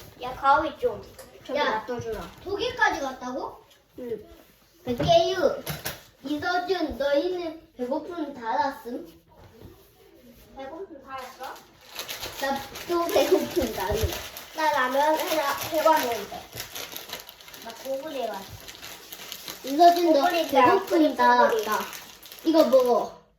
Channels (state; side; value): identical; both; correlation 1.00